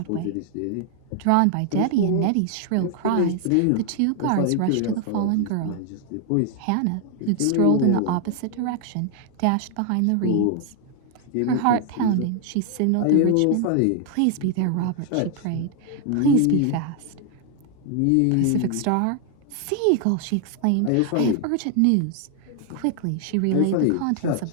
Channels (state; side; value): different; both; correlation 0.00